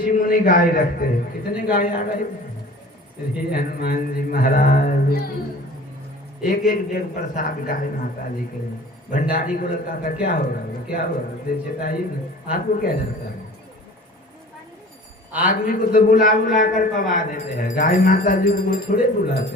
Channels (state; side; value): normal; both; correlation 0.43